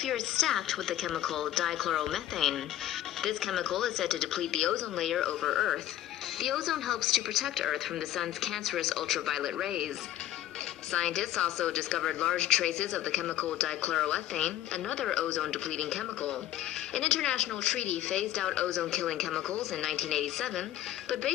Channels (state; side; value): quieter; right; 12.9 dB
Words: is stacked with the chemical dichloromethane. This chemical is said to deplete the ozone layer over Earth. The ozone helps to protect Earth from the sun's cancerous ultraviolet rays. Scientists also discovered large traces of the chemical dichloroethane, another ozone-depleting chemical. An international treaty phased out ozone-killing chemicals in 1987, but